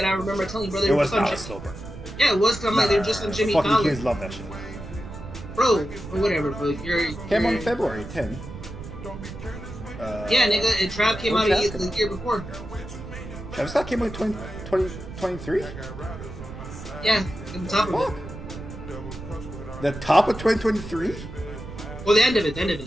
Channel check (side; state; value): right; noise; rumble, 12 dB below the sound